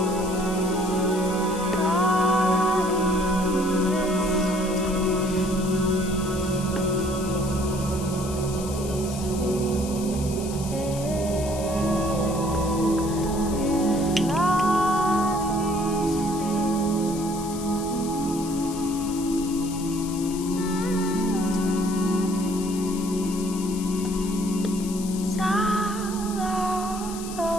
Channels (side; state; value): left; noise; hiss, 12 dB below the sound